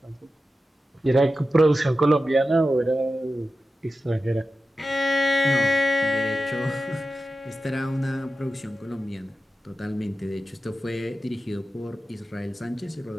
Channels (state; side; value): normal; both; correlation 0.93